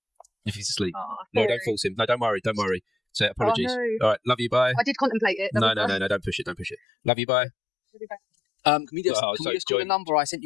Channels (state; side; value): drops out; right; at 6.8 s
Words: If he's asleep, no, don't force him. No, don't worry. Say apologies. No. All right, love you. Bye. I did contemplate it. No, don't push it. Love you. Bye. Can we just call the number I sent